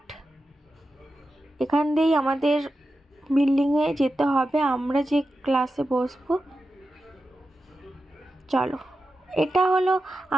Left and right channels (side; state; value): both; normal; correlation 0.91